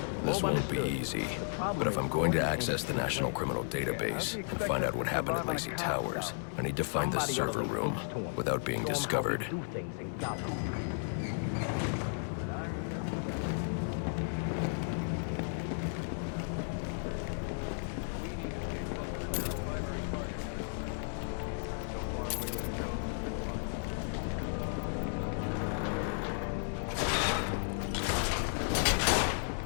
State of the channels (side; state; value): right; silent; digital silence